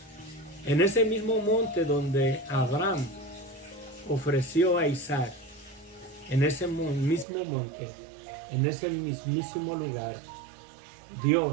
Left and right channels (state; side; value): drops out; left; at 7.2 s